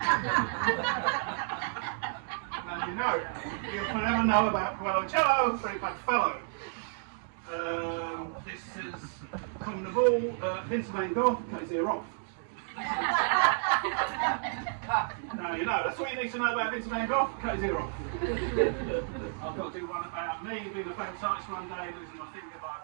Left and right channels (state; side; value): silent; left; digital silence